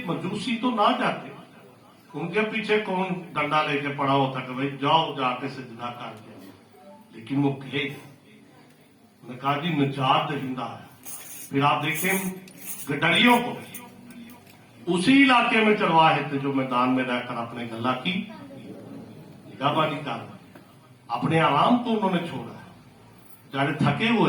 मजूसी तो ना जाते, उनके पीछे कौन डंडा लेके पड़ा होता कि भाई जाओ जाके सजदा कर दिया, लेकिन वो कहे उन्होंने कहा जी निजात दहिंदा है। फिर आप देखें गडरियों को उसी इलाके में चलवाए थे जो मैदान में रहकर अपने गला की निगाहबानी कर, अपने आराम को उन्होंने छोड़ा, जाने थके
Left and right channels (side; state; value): both; identical; correlation 1.00